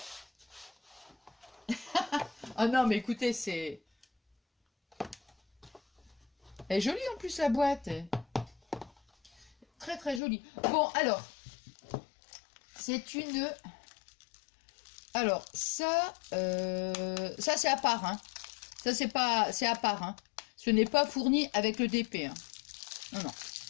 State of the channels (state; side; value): drops out; right; at 10.2 s